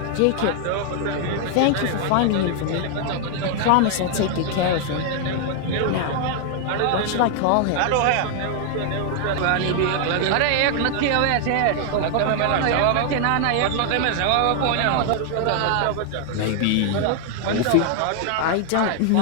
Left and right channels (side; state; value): both; different; correlation 0.00